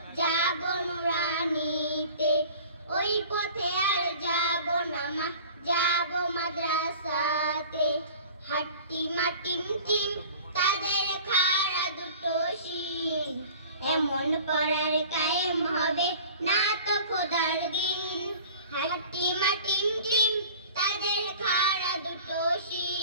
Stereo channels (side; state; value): both; inverted; correlation -0.43